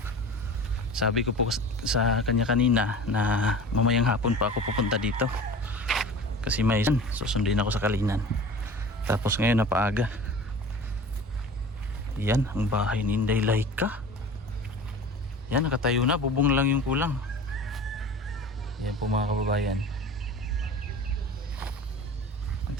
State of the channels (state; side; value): normal; both; correlation 0.39